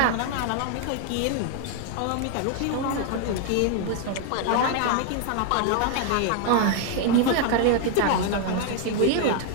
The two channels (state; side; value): different; both; correlation 0.00